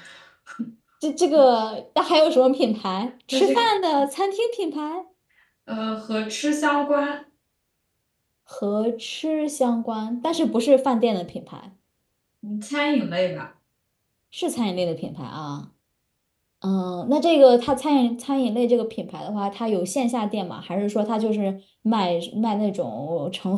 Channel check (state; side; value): identical; both; correlation 1.00